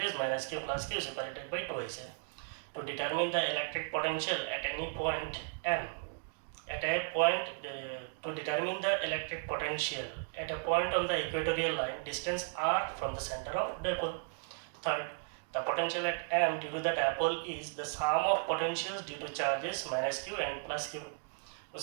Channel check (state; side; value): silent; left; 54 dB below the other